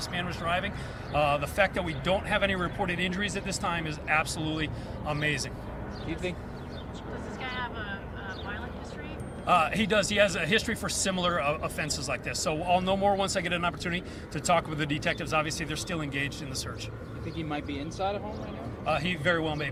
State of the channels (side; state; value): both; identical; correlation 1.00